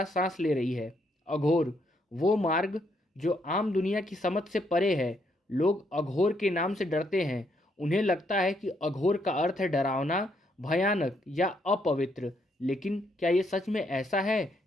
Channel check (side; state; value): both; normal; correlation 0.74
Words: सांस ले रही है। अघोर, वो मार्ग जो आम दुनिया की समझ से परे है। लोग अघोर के नाम से डरते हैं। उन्हें लगता है कि अघोर का अर्थ है डरावना, भयानक या अपवित्र। लेकिन क्या ये सच में ऐसा है,